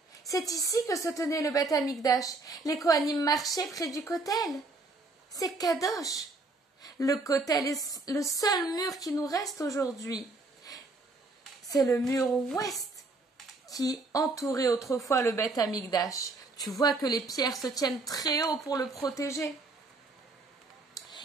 C'est ici que se tenait le Beth Amikdash. Les Kohanim marchaient près du Kotel. C'est Kadosh. Le Kotel est le seul mur qui nous reste aujourd'hui. C'est le mur ouest qui entourait autrefois le Beth Amikdash. Tu vois que les pierres se tiennent très haut pour le protéger.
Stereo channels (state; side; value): quieter; left; 3.3 dB